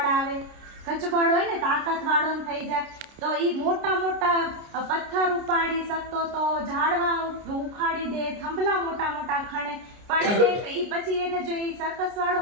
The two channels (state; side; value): late; left; 29 ms